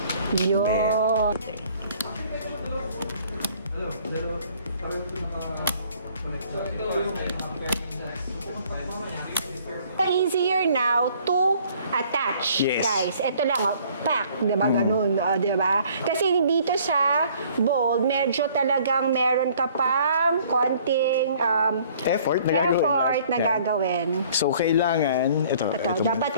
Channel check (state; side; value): inverted; both; correlation -0.57